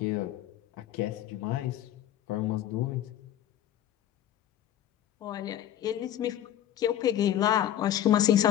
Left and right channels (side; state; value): right; quieter; 11.5 dB